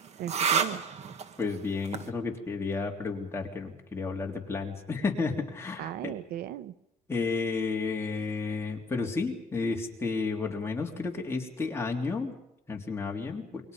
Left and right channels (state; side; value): normal; both; correlation 0.55